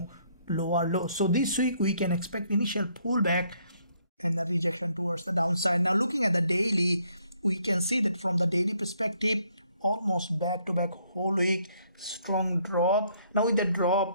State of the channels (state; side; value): inverted; both; correlation -0.68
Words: lower low. So this week we can expect initial pullback and a rejection towards the downside. Now looking at the daily, we can see that from the daily perspective, almost back-to-back whole week strong drop. Now with the